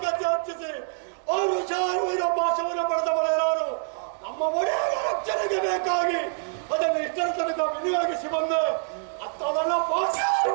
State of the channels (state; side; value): silent; left; digital silence